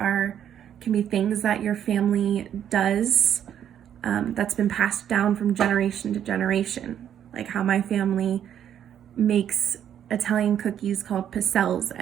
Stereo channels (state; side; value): quieter; left; 9.7 dB